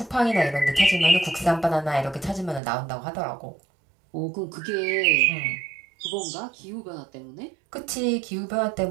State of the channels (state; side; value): drops out; left; at 2.6 s